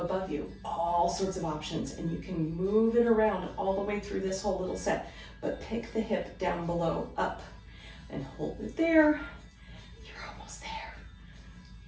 above you. All sorts of options, and you can move it around all the way through this whole little set, but pick the hip down below, up, and hold it there. You're almost there.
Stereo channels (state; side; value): identical; both; correlation 1.00